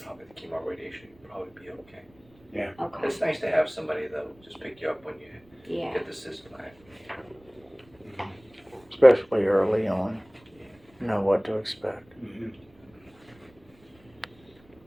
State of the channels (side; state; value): right; noise; rumble, 29 dB below the sound